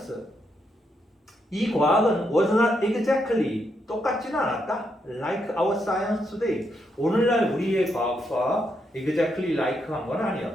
이 과학은 was not exactly, 똑같지는 않았다. Like our science today. 오늘날 우리의 과학과 exactly like 한 건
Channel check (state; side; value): normal; both; correlation 0.79